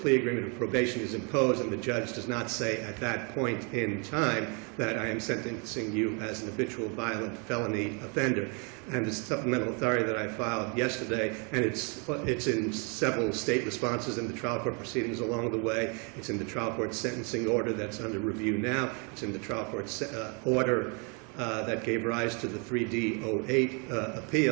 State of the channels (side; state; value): left; quieter; 34.5 dB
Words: agreement of probation is imposed, and the judge does not say at that point in time that I am sentencing you as an habitual violent felony offender. And the supplemental authority that I filed yesterday, and it's in several state responses in the trial court proceedings along the way. It's in the trial court sentencing order that's under review now. It's in the trial court order that gave rise to the 3D08